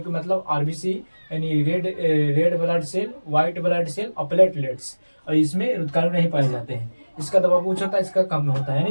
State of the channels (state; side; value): inverted; both; correlation -1.00